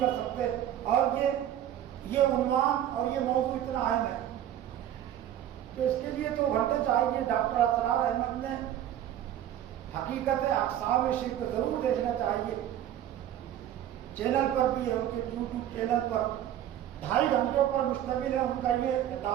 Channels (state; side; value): quieter; left; 11.4 dB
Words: کر سکتے؟ اور یہ عنوان اور یہ موضوع اتنا اہم ہے کہ اس کے لیے تو گھنٹے چاہیے. ڈاکٹر اسرار احمد نے حقیقت اقسام شرک ضرور دیکھنا چاہیے. چینل پر بھی ہے، ان کے یوٹیوب چینل پر 2.5 گھنٹوں پر مشتمل ہے ان کا یہ